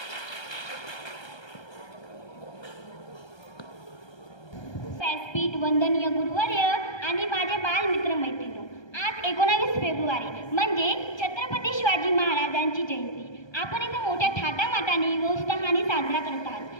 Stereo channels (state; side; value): late; right; 1.3 ms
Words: व्यासपीठ, वंदनीय गुरुवर्य आणि माझे बालमित्र मैत्रिणी, आज 19 फेब्रुवारी म्हणजे छत्रपती शिवाजी महाराजांची जयंती. आपण इथं मोठ्या थाटामाटाने व उत्साहाने साजरा करत आहात.